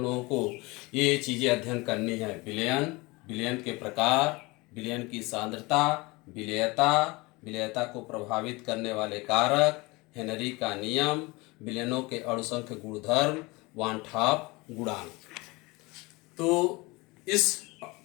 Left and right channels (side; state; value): right; quieter; 24.2 dB